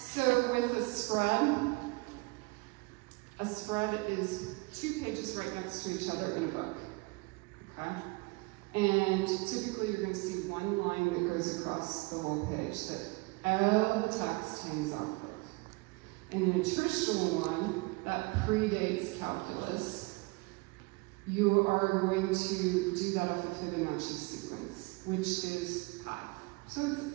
with a spread is two pages right next to each other in a book, okay? And typically you're going to see one line that goes across the whole page that all the text hangs off of. And in a traditional one that predates calculus, you are going to do that off a Fibonacci sequence, which is pi. So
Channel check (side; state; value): left; quieter; 26.2 dB